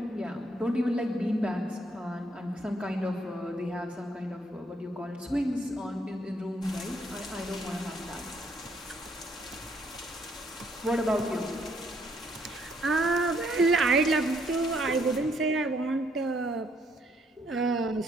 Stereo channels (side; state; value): both; normal; correlation 0.69